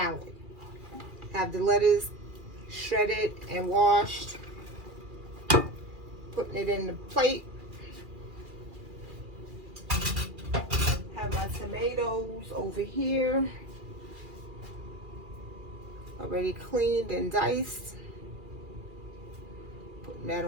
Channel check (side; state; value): left; late; 2.4 ms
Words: Have the lettuce shredded and washed, putting it in the plate. Have my tomatoes over here, already cleaned and diced. Putting that